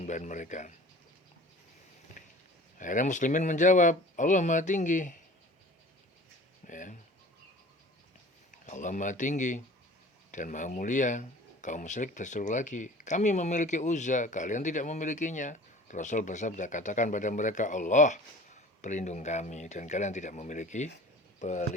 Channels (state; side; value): normal; both; correlation 0.43